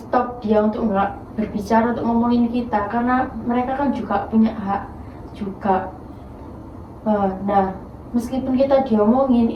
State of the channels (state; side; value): identical; both; correlation 1.00